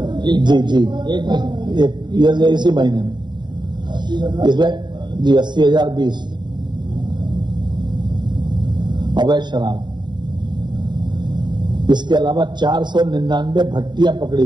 जी इसी महीने में इसमें जी 80,020 अवैध शराब। इसके अलावा 499 भट्टियां पकड़ी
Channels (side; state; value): left; late; 0.22 ms